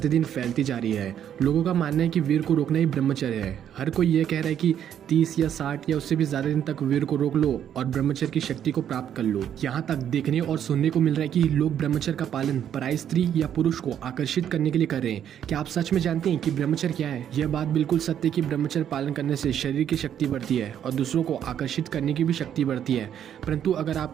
फैलती जा रही है। लोगों का मानना है कि वीर को रोकना ही ब्रह्मचर्य है। हर कोई ये कह रहा है कि 30 या 60 या उससे भी ज्यादा दिन तक वीर को रोक लो और ब्रह्मचर्य की शक्ति को प्राप्त कर लो। यहाँ तक देखने और सुनने को मिल रहा है कि लोग ब्रह्मचर्य का पालन पराई स्त्री या पुरुष को आकर्षित करने के लिए कर रहे हैं। क्या आप सच में जानते हैं कि ब्रह्मचर्य क्या है? यह बात बिल्कुल सत्य है कि ब्रह्मचर्य पालन करने से शरीर की शक्ति बढ़ती है और दूसरों को आकर्षित करने की भी शक्ति बढ़ती है। परंतु अगर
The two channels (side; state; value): left; quieter; 9.6 dB